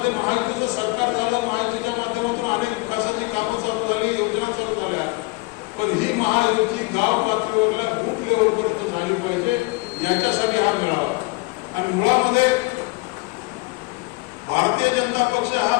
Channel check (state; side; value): quieter; right; 24.1 dB